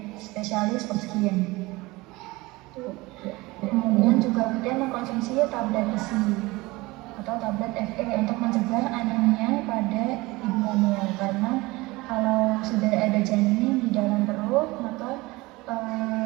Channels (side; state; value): left; quieter; 21.7 dB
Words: spesialis skin. Kemudian juga rutin mengkonsumsi tablet besi atau tablet Fe untuk mencegah anemia pada ibu hamil, karena kalau sudah ada janin di dalam perut maka